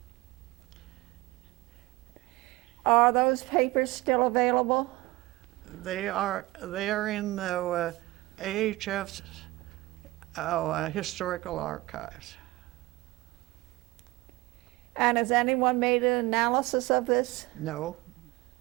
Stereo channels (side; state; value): left; quieter; 20.3 dB